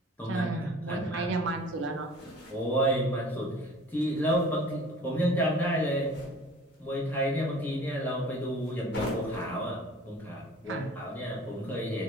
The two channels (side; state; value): both; normal; correlation 0.46